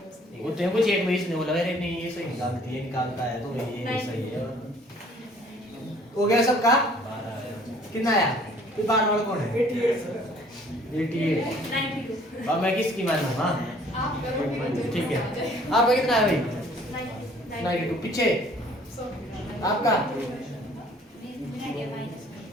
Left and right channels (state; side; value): normal; both; correlation 0.56